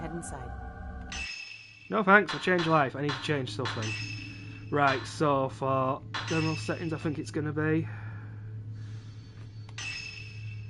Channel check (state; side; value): identical; both; correlation 1.00